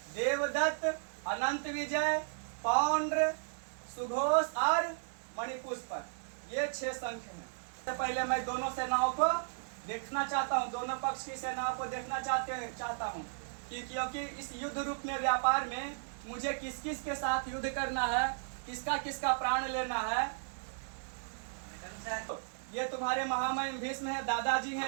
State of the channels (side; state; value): left; silent; digital silence